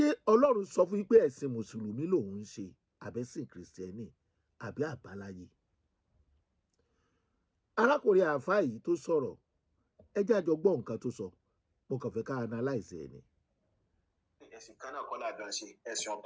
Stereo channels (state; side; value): identical; both; correlation 1.00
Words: Ọlọ́run sọ fún yín pé ẹ̀sìn Mùsùlùmí lòun ń ṣe àbẹ́sìn Kìrìsìtẹ́nì àbí àbáláyé? Arákùnrin àáfàá yìí tó sọ̀rọ̀, ẹ jẹ́ àjọ gbọ́ nǹkan tó sọ. Mo kàn fẹ́ ká analyze ẹ̀ ni. Ẹ̀sìn kan náà kọ́ làjọ ń ṣe, ẹ̀sìn